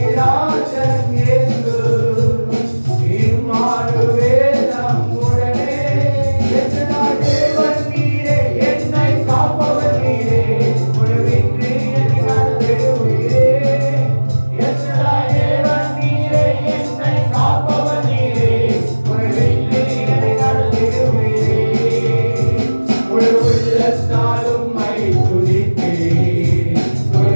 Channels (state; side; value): inverted; both; correlation -1.00